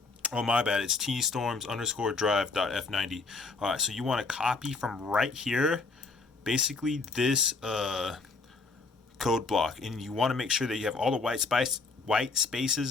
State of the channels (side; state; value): right; quieter; 4.0 dB